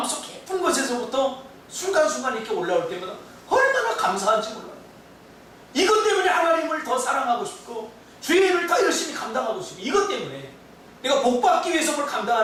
깊은 곳에서부터 순간순간 이렇게 올라올 때마다 얼마나 감사한지 몰라요. 이것 때문에 하나님을 더 사랑하고 싶고 주의 일을 더 열심히 감당하고 싶고 이것 때문에 내가 복받기 위해서 뭘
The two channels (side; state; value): both; identical; correlation 1.00